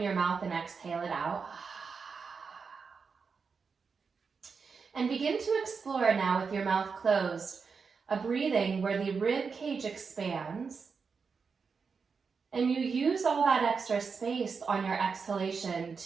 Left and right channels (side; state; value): left; quieter; 5.4 dB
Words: your mouth and exhale it out. And begin to explore now with your mouth closed, a breathing where the rib cage expands and you use all that extra space on your exhalation